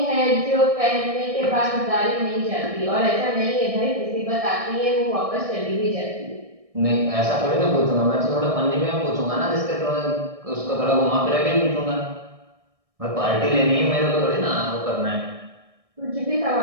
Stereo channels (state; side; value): late; left; 1.6 ms